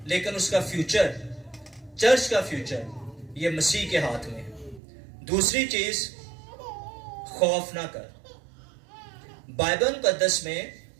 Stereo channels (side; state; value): left; drops out; at 4.8 s